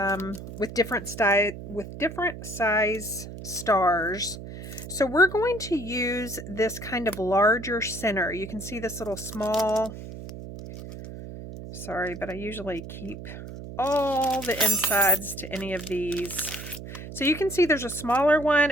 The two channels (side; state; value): right; noise; hum, 11 dB below the sound